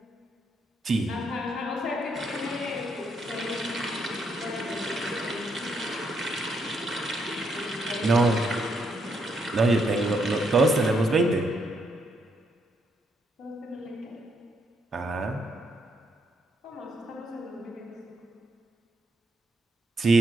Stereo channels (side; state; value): both; normal; correlation 0.75